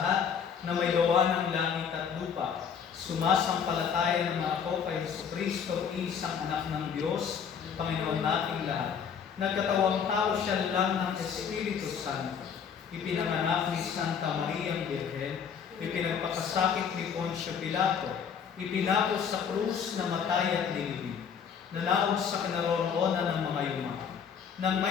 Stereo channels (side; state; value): right; quieter; 7.2 dB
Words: na may gawa ng langit at lupa. Sumasampalataya naman ako kay Jesucristo, isang anak ng Diyos, Panginoon nating lahat. Nagkatawang tao siya lang ng Espiritu Santo. Ipinanganak ni Santa Maria Birhen, ipinagpakasakit ni Poncio Pilato, ipinapos sa krus na matay at nilibing, nanaog sa kinaroroonan ng mga yuma. Nang